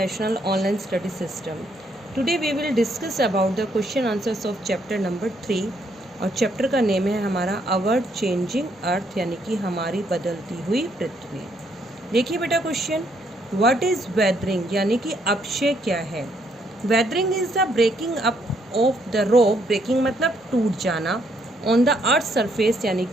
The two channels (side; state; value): both; normal; correlation 0.72